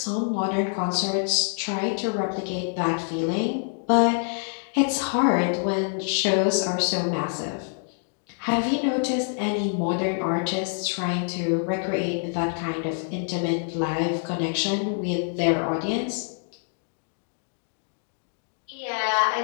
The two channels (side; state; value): right; silent; digital silence